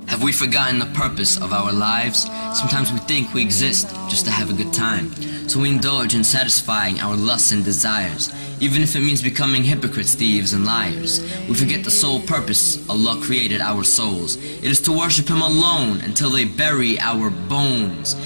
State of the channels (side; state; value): both; inverted; correlation -1.00